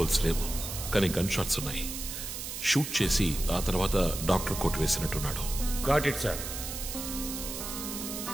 లేవు, కానీ గన్ షాట్స్ ఉన్నాయి. షూట్ చేసి ఆ తర్వాత డాక్టర్ కోట్ వేసినట్టున్నాడు. Got it sir.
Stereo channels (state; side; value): noise; right; hiss, 6 dB below the sound